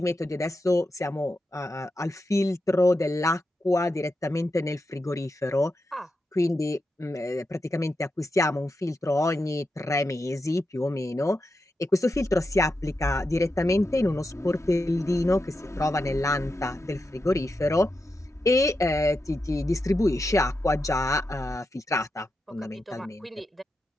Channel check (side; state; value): both; normal; correlation 0.87